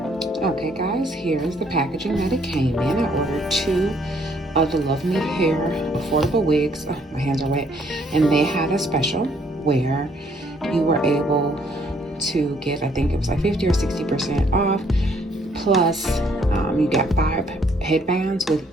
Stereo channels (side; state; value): both; normal; correlation 0.66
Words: Okay guys, here's the packaging that it came in. I ordered 2 of the Love Me Hair affordable wigs. Oh, my hands are wet. And they had a special where you were able to get, I think it was like 50 or 60% off. Plus, you got 5 headbands with